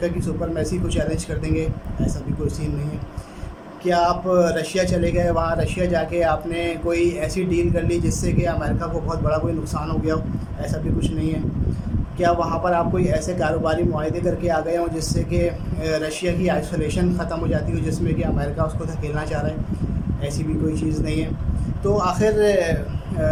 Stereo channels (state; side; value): identical; both; correlation 1.00